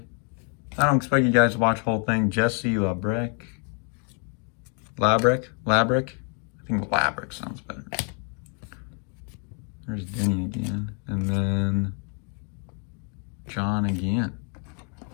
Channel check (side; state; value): right; quieter; 39.0 dB